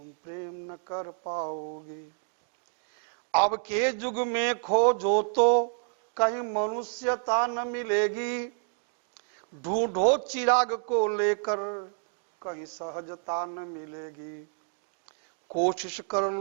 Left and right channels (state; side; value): silent; left; 58 dB below the other